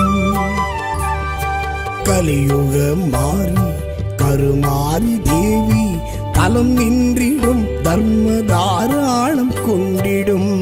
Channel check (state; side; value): identical; both; correlation 1.00